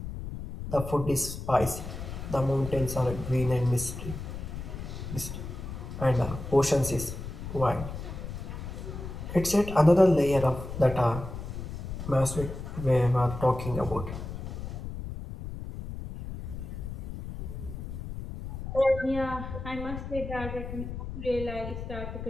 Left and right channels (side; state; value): left; noise; rumble, 8 dB below the sound